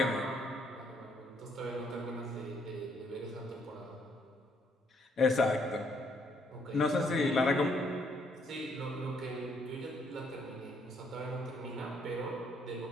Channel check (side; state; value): both; normal; correlation 0.69